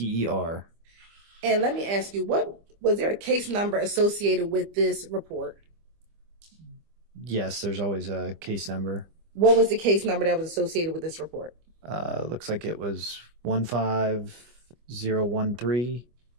And let me ask you, what was there a case number associated with this report? Yes, there's always a case number. What was the case number that was associated with this report? Looks like it was 15013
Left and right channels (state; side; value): late; left; 25 ms